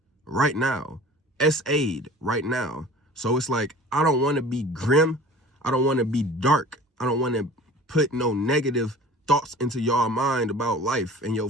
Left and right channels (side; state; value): both; normal; correlation 0.43